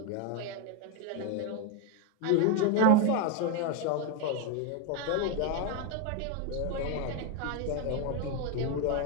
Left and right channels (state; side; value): different; both; correlation 0.02